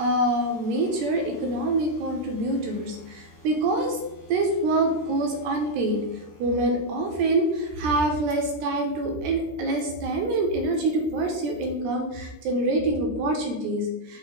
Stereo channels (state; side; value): late; left; 13 ms